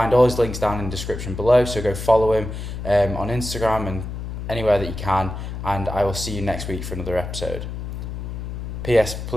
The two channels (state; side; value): noise; left; hum, 7 dB below the sound